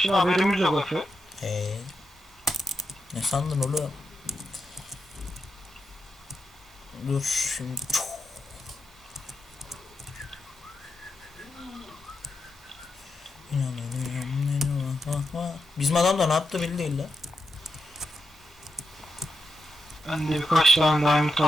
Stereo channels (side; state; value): both; normal; correlation 0.86